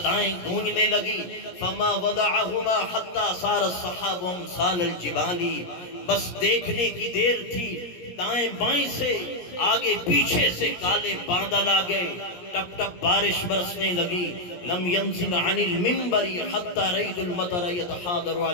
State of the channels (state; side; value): late; right; 17 ms